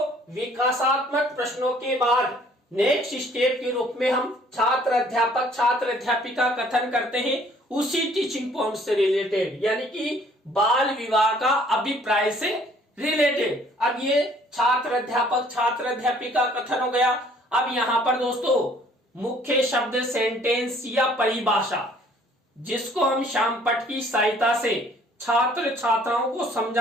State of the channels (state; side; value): normal; both; correlation 0.58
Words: विकासात्मक प्रश्नों के बाद नेक्स्ट स्टेप के रूप में हम छात्र अध्यापक छात्र अध्यापिका कथन करते हैं उसी टीचिंग पॉइंट से रिलेटेड, यानी कि बाल विवाह का अभिप्राय से रिलेटेड। अब ये छात्र अध्यापक छात्र अध्यापिका कथन हो गया। अब यहाँ पर दोस्तों मुख्य शब्द सेंटेंस या परिभाषा, जिसको हम श्याम पट की सहायता से छात्र छात्राओं को